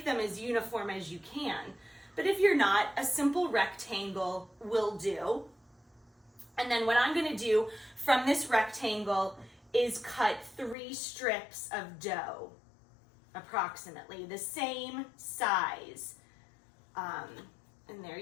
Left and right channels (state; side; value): drops out; right; at 10.8 s